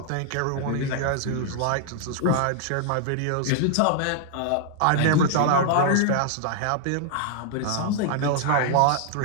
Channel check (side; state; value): both; different; correlation 0.00